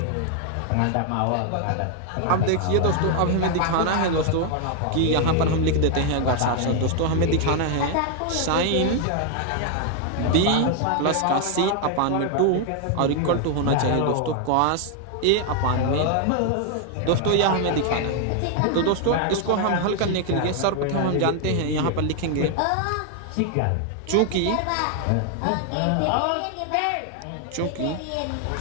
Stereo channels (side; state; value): both; different; correlation 0.00